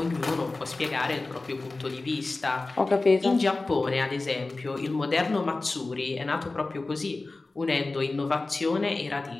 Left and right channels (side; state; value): right; quieter; 3.3 dB